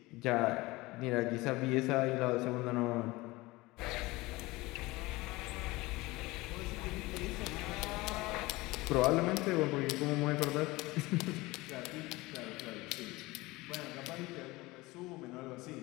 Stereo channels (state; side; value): quieter; right; 21.2 dB